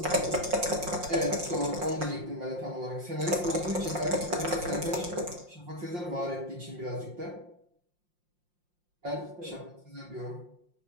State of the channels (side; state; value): left; late; 5.6 ms